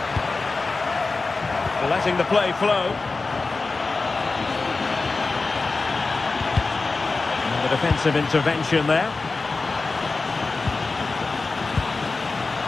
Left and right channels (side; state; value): right; quieter; 3.8 dB